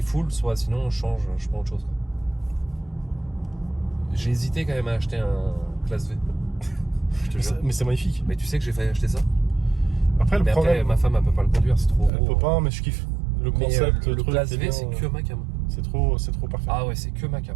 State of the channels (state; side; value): drops out; left; at 12.1 s